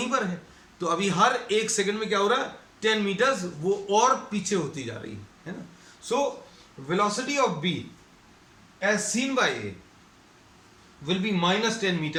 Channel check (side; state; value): both; identical; correlation 1.00